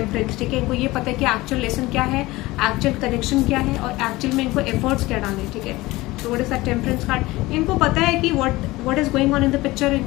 ठीक है, इनको ये पता है कि एक्चुअल लेसन क्या है, एक्चुअल कनेक्शन क्या है और एक्चुअल में इनको एफर्ट्स क्या डालने, ठीक है। So what is that temperance card, इनको पता है कि what is going on in the picture,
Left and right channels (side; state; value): right; quieter; 19.7 dB